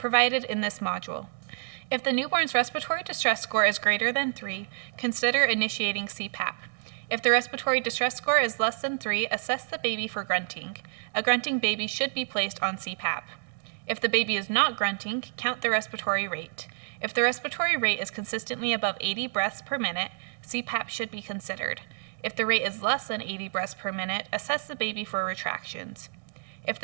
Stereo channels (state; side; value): silent; left; digital silence